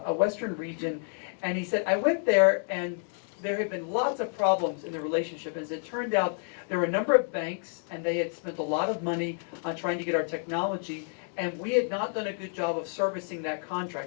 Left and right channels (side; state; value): right; silent; 58 dB below the other